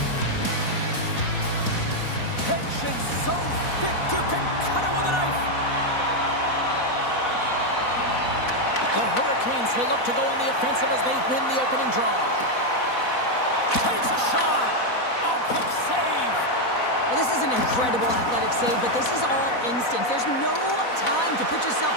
Tension so thick you can cut it with a knife. The Hurricanes will look to go on the offensive as they win the opening draw. Takes a shot. Oh, quick save. Well, this is an incredible athletic save, but this is all instinct. There's no time to put yourself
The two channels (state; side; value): late; right; 4.1 ms